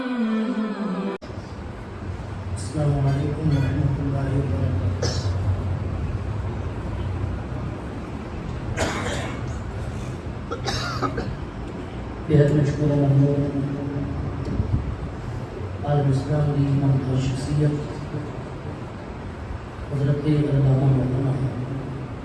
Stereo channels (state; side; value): identical; both; correlation 1.00